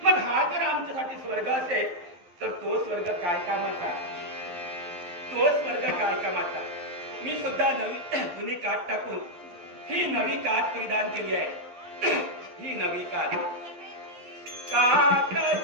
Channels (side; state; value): left; late; 11 ms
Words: मग हा जर आमच्यासाठी स्वर्ग असेल तर तो स्वर्ग काय कामाचा? तो स्वर्ग काय कामाचा? मी सुद्धा नवी जुनी काठ टाकून ही नवी काठ परिधान केली आहे. ही नवी काठ